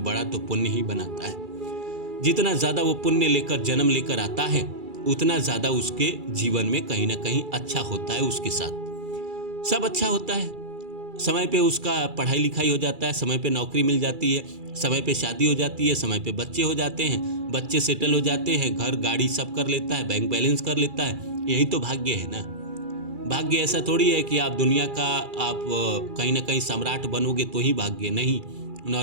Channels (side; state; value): left; late; 2.3 ms